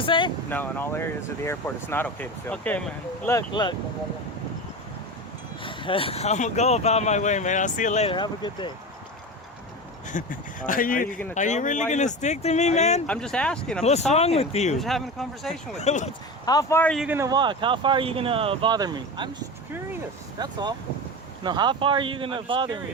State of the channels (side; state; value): both; normal; correlation 0.26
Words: say? No, in all areas of the airport, it's not okay to film. Okay, man. Look. I'm gonna go about my way, man. I'll see you later. Have a good day. All right, Are you really gonna stick to me, man? I'm just asking. I'm What's just talking. wrong with you? I'm just having a conversation with you. How far are you gonna walk? How far are you gonna bother me? I'm just curious. That's all. No, how far are you gonna I'm just bother me,